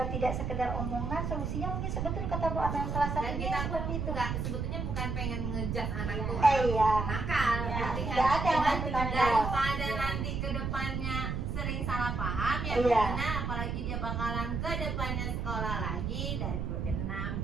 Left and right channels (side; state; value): right; noise; rumble, 2 dB below the sound